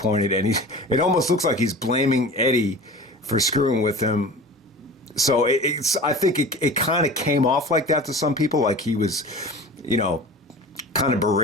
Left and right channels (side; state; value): both; normal; correlation 0.36